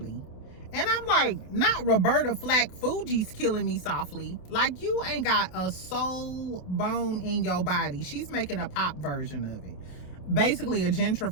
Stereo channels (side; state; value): right; late; 28 ms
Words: And I'm like, not Roberta Flack Fuji's Killing Me Softly. Like, you ain't got a soul bone in your body. She's making a pop version of it. Basically a